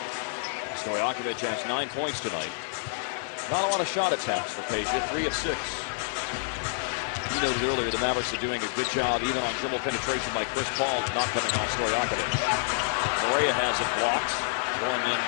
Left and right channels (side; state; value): right; silent; 59 dB below the other